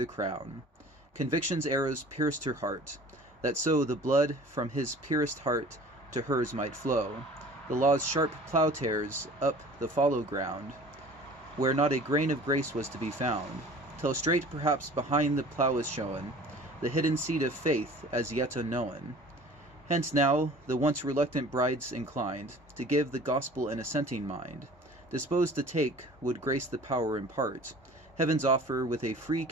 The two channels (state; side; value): normal; both; correlation 0.45